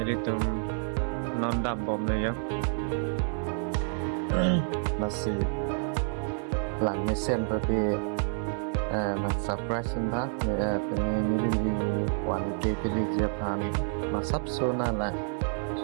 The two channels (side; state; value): left; silent; digital silence